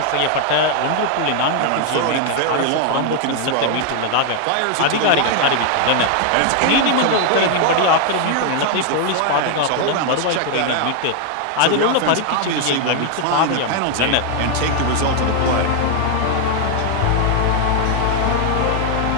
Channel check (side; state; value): both; different; correlation 0.00